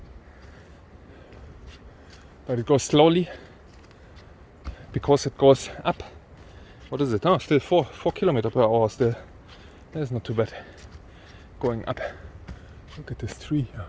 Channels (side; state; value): both; identical; correlation 1.00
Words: But it goes slowly because it goes up. What is it? Oh, still 4 kilometers per hour still. That is not too bad. Going up. Look at this tree here.